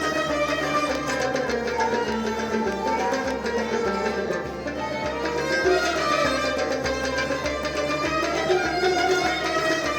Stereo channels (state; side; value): identical; both; correlation 1.00